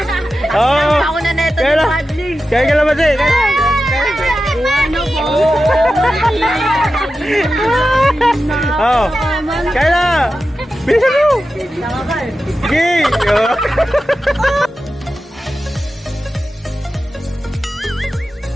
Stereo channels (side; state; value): both; normal; correlation 0.92